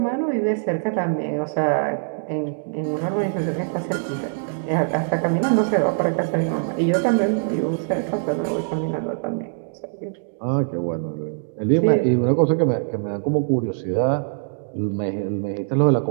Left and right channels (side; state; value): left; silent; digital silence